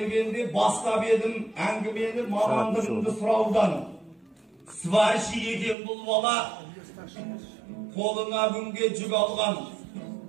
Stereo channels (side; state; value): left; drops out; at 5.8 s